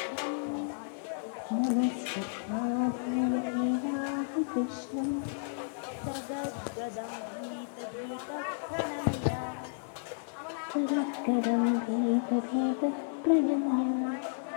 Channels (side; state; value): right; silent; digital silence